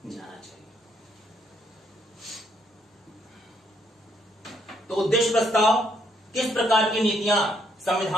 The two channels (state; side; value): normal; both; correlation 0.71